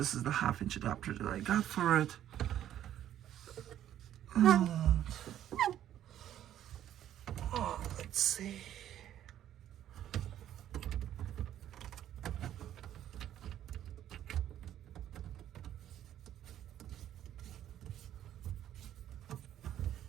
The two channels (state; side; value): quieter; left; 11.4 dB